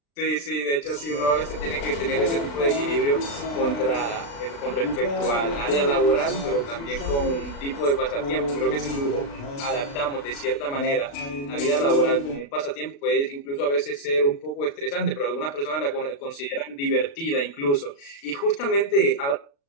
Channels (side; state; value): right; late; 36 ms